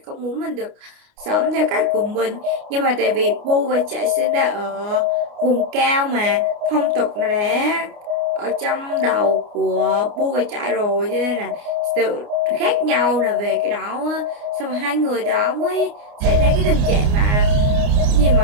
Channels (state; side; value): late; left; 29 ms